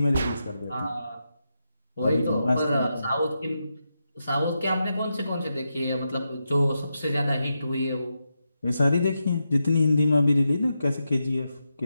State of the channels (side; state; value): both; inverted; correlation -0.87